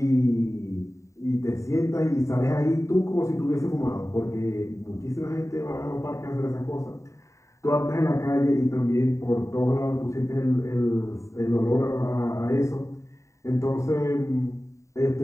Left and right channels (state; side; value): late; right; 0.15 ms